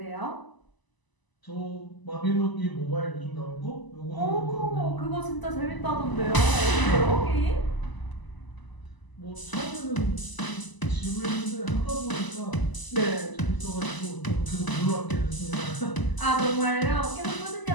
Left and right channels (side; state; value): right; late; 1.0 ms